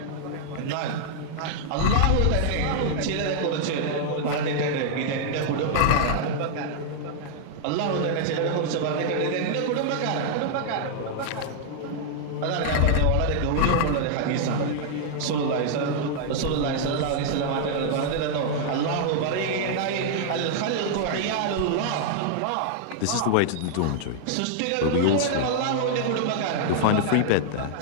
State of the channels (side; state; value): both; different; correlation -0.01